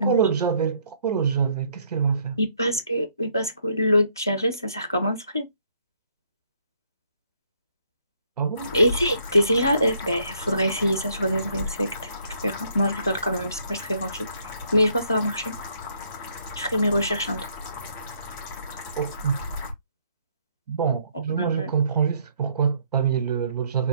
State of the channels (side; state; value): both; inverted; correlation -0.68